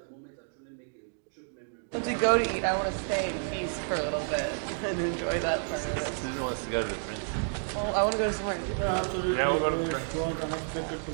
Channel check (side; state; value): left; silent; digital silence